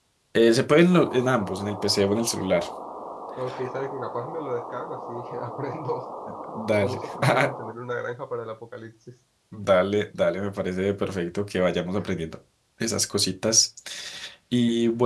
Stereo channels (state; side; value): identical; both; correlation 1.00